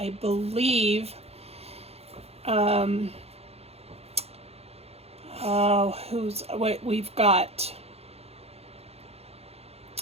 believe, we've got,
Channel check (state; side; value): late; left; 0.29 ms